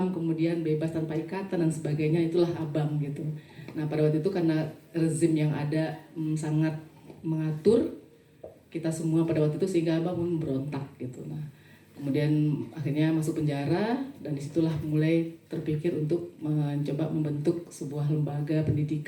kemudian bebas tanpa ikatan dan sebagainya, itulah Abang gitu. Nah pada waktu itu karena rezim yang ada sangat mengatur kita semua pada waktu itu, sehingga Abang pun berontak gitu. Nah kemudian akhirnya masuk penjara, dan disitulah mulai terpikir untuk mencoba membentuk sebuah lembaga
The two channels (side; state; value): both; identical; correlation 1.00